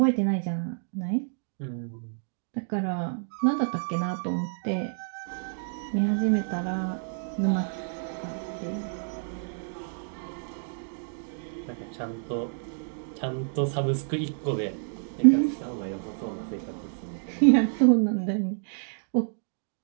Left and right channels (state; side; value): silent; left; digital silence